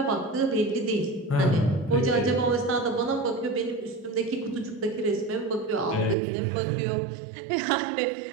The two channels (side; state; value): left; drops out; at 6.2 s